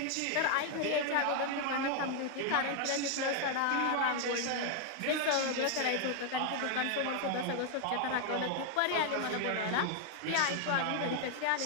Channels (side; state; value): both; different; correlation 0.00